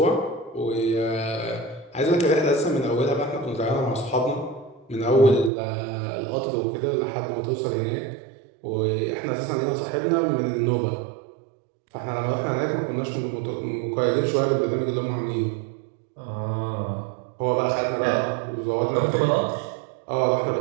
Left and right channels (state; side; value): drops out; left; at 5.5 s